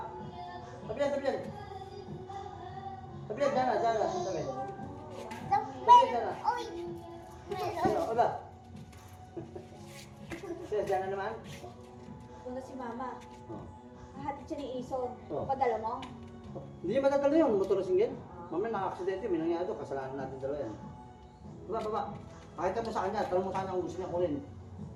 Tabi yan, tabi yan. Tabi yan, dyan na, dyan na. Tabi. Oy! Ano, oba? Siya, dyan na naman. Doon na si Mama. Oh. Hahatid siya ni Ison. Oh. Padala mo? Hindi niya matatalo yun, motor na singgil. Mamaya naka-aksidente, may nangyari doon, kasalanan natin dalawa yan. Baba, baba. Pakita mo sa kanya, tanong mo sana kung gusto niya kunin.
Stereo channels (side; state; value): both; identical; correlation 1.00